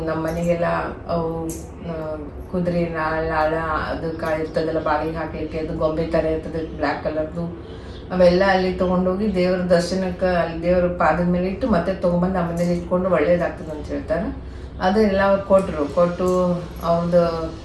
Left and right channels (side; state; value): both; identical; correlation 1.00